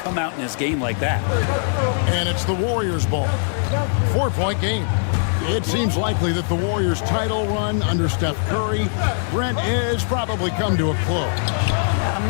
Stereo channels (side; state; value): right; silent; digital silence